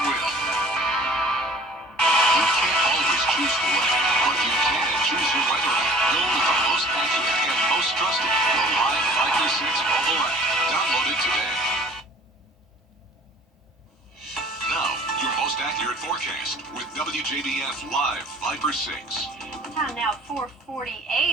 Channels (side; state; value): both; normal; correlation 0.49